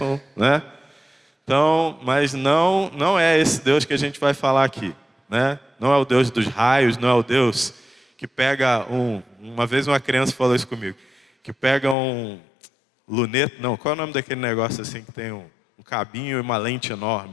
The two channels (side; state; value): right; drops out; at 12.0 s